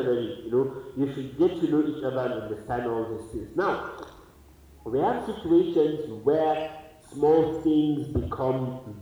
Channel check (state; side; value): identical; both; correlation 1.00